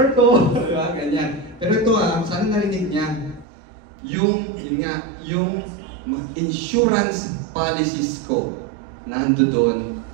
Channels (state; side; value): drops out; left; at 3.5 s